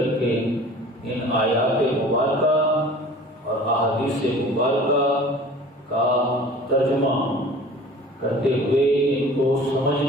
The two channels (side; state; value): both; normal; correlation 0.44